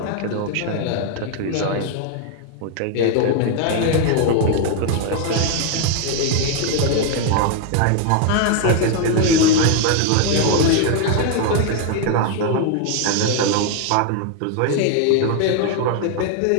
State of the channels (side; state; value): both; different; correlation 0.00